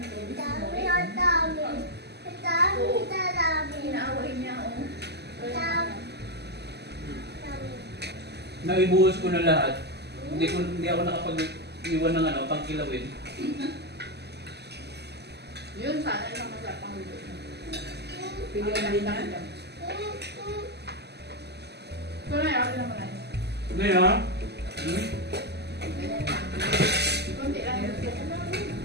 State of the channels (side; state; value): left; late; 0.49 ms